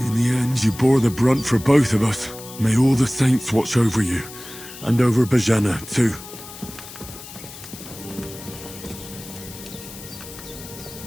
the end, you bore the brunt for both of us. May all the saints watch over you, and over Bajana, too.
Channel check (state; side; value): noise; left; hiss, 15 dB below the sound